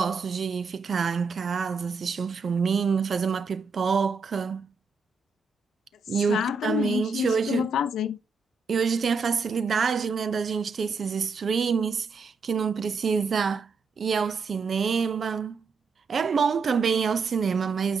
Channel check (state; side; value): quieter; left; 4.3 dB